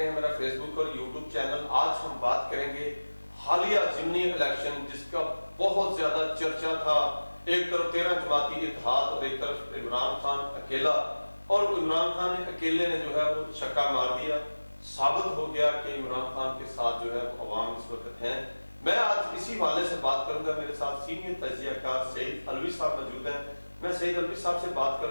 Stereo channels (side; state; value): both; inverted; correlation -1.00